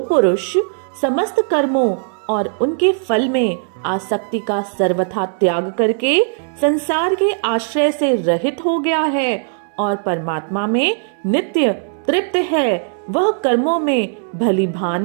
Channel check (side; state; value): left; silent; digital silence